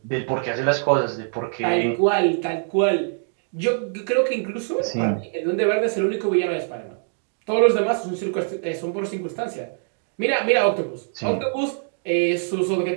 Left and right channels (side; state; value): left; silent; digital silence